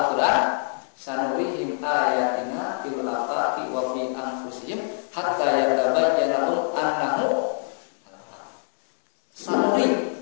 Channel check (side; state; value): right; silent; 62 dB below the other